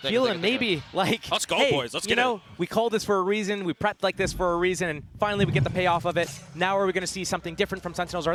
feeling maybe like, let's go, hey, boys, let's you get know, we called this for a reason, we prepped like this for a reason, and finally we get the payoff of it. Now are we going to see something different from Sentinels, or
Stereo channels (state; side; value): identical; both; correlation 1.00